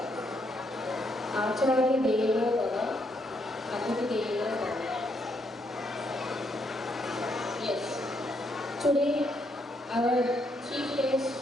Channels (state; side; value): normal; both; correlation 0.75